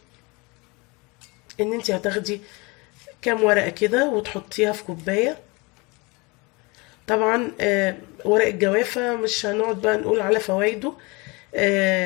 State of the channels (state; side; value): quieter; right; 26.9 dB